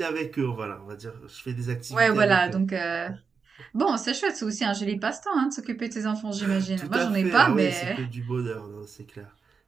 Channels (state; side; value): quieter; left; 5.4 dB